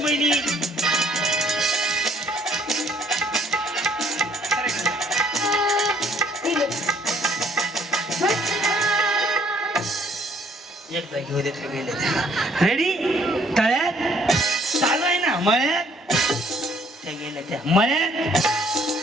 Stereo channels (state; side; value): normal; both; correlation 0.62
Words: एकदा घेऊ देत गेले. रेडी? तळ्यात चालू आहे ना. मळ्यात त्या गेल्या त्या. मळ्यात